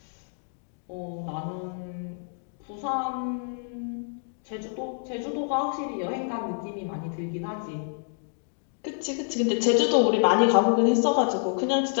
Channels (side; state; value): right; silent; 60 dB below the other